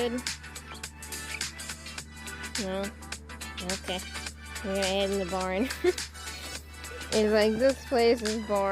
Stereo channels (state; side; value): identical; both; correlation 1.00